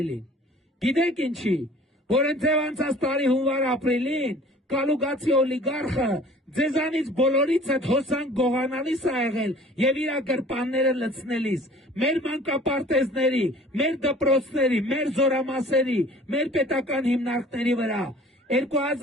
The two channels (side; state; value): both; normal; correlation 0.49